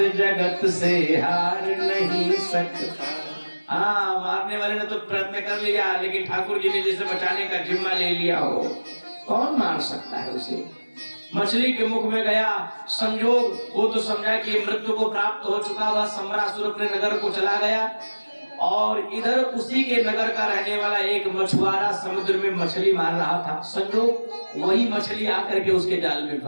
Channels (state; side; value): inverted; both; correlation -1.00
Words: जगत से हार नहीं सकता। हाँ, मारने वाले ने तो प्रयत्न कर लिया, लेकिन ठाकुर जी ने जिसे बचाने का जिम्मा ले लिया हो, कौन मार सकता है उसे। मछली के मुख में गया, संजोग वो तो समझा कि मृत्यु को प्राप्त हो चुका। वह सम्रासुर अपने नगर को चला गया, और इधर उसी के नगर का रहने वाला एक मछुआरा समुद्र में मछली मार रहा था। संजोग वही मछली आकर के उसके जाल में